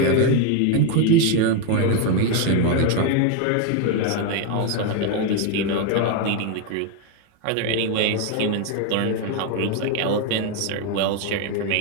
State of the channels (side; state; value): both; different; correlation 0.01